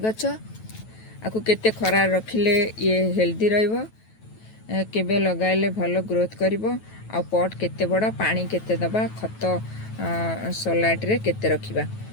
आकु केते खरा रखिले ये हेल्दी रहइबो, केबे लगाइले भलो ग्रोथ करिवो, आ पॉट केते बड़ा, पानी केते दबा, खत सलाइट रे केते रखिबा,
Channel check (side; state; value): right; late; 9.2 ms